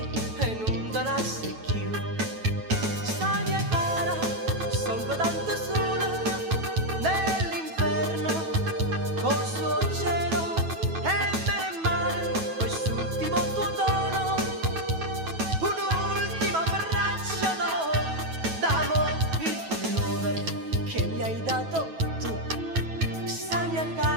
e non te la secchio. Sta mia cara, sono tanto sola nell'inferno, col suo cielo e bene e male, quest'ultimo tuo tono, un'ultima braccia d'amore, il pullover che mi hai dato tu, sta mia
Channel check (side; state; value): left; late; 9.2 ms